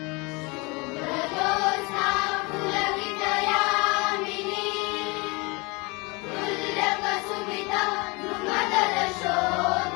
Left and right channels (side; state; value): right; quieter; 27.6 dB